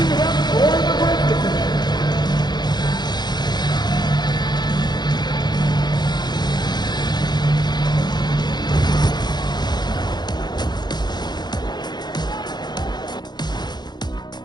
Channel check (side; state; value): right; late; 0.21 ms